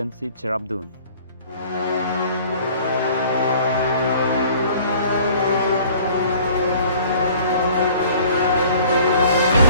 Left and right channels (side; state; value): both; inverted; correlation -0.51